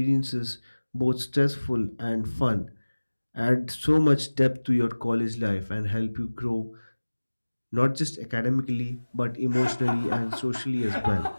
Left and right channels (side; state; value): both; inverted; correlation -1.00